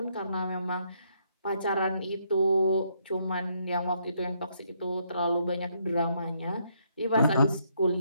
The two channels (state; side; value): inverted; both; correlation -0.73